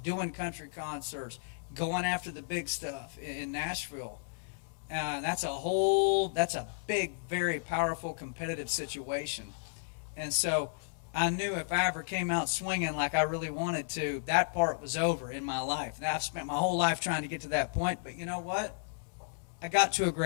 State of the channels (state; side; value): silent; right; digital silence